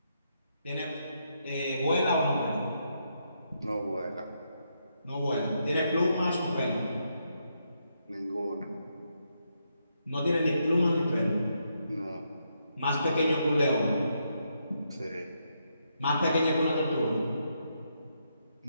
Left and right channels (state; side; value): inverted; both; correlation -0.80